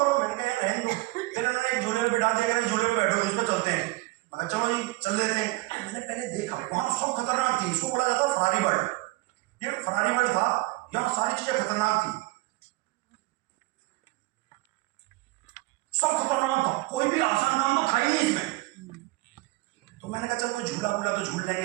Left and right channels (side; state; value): left; quieter; 21.4 dB